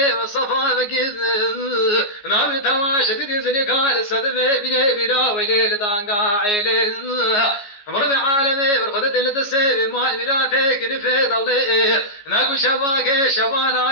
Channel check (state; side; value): late; right; 14 ms